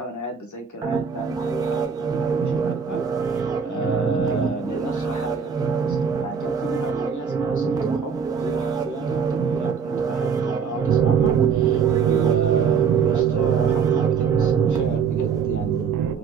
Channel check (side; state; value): left; quieter; 6.5 dB